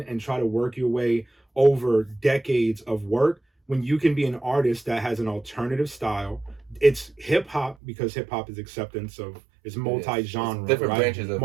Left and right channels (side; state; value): left; drops out; at 7.8 s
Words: and try to work your way over decades of work when you can be an artist that has an alternative style? It's hip hop, because hip hop is acceptance of, it's multi-genre, different right? branches of